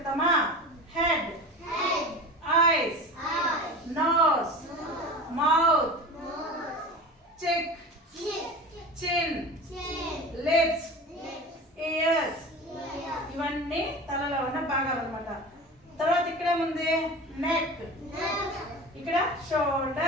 Head, eyes, nose, mouth, cheek, chin, lips, ears. ఇవన్నీ తలలో ఉన్న భాగాలు అన్నమాట. తర్వాత ఇక్కడేముంది? నెక్. ఇక్కడ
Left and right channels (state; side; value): normal; both; correlation 0.33